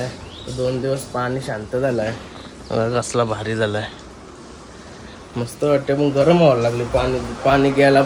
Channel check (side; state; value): both; identical; correlation 1.00